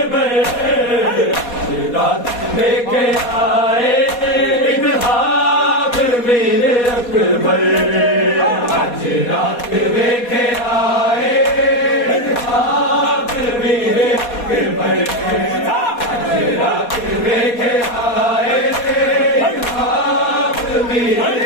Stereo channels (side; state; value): right; late; 4.2 ms